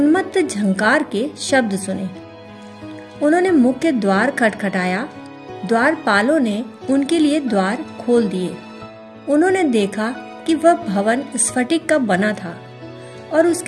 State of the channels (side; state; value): both; identical; correlation 1.00